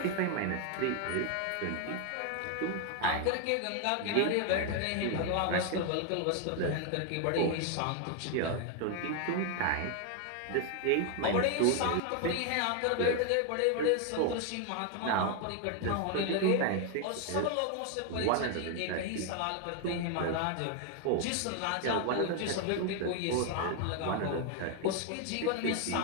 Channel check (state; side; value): different; both; correlation 0.01